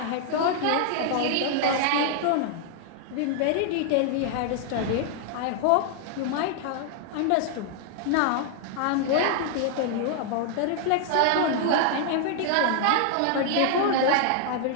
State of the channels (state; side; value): different; both; correlation 0.00